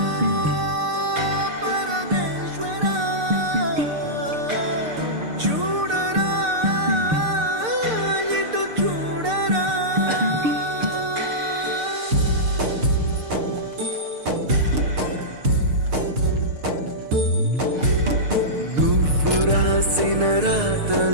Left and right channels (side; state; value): left; late; 6.6 ms